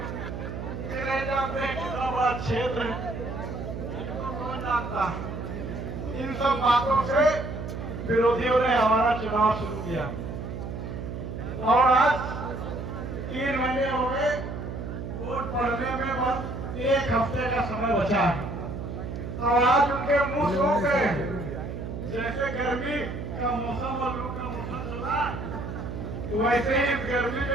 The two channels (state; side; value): noise; right; hum, 7 dB below the sound